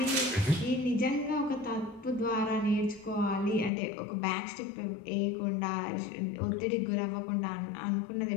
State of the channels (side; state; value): right; drops out; at 3.7 s